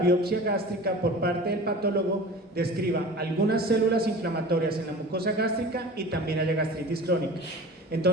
gástrica por parte del patólogo describa algunas células inflamatorias en la mucosa gástrica y también haya gastritis crónica.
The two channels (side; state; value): both; normal; correlation 0.38